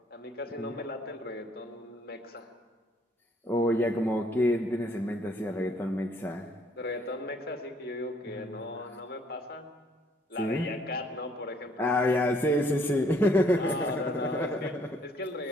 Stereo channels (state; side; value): normal; both; correlation 0.64